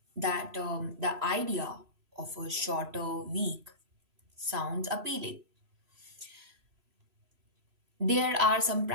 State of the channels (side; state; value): left; late; 3.0 ms